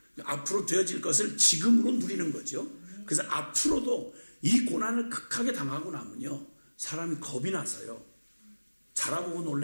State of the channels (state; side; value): inverted; both; correlation -1.00